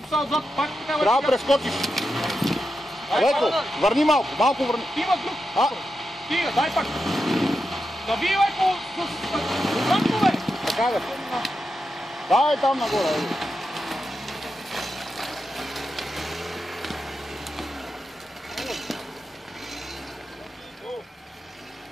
са отзад, пак така. Трябва да прескочиш. Леко, върни малко върни. Има друг. Стига, дай пак. Нави леко с отзадно, бе. Така бе. Дай там нагоре.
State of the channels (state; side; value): normal; both; correlation 0.88